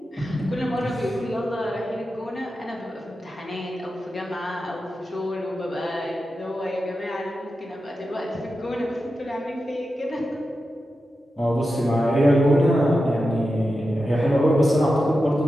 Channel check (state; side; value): normal; both; correlation 0.91